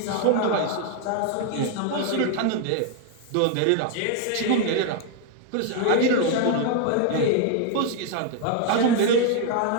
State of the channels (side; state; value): both; different; correlation 0.00